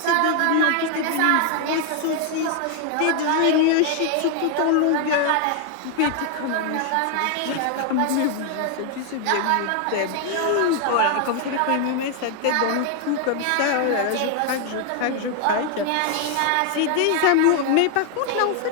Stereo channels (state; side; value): different; both; correlation 0.00